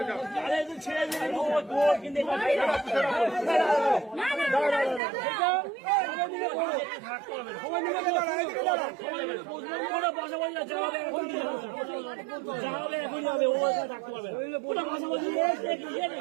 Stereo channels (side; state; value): left; drops out; at 5.0 s